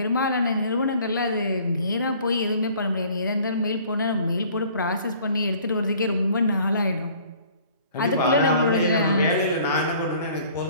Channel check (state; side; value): inverted; both; correlation -0.53